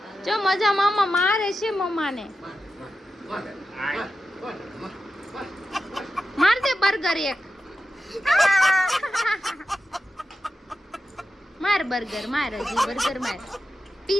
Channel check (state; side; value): normal; both; correlation 0.91